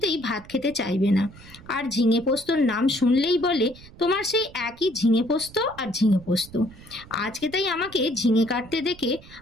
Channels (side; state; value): right; noise; rumble, 20 dB below the sound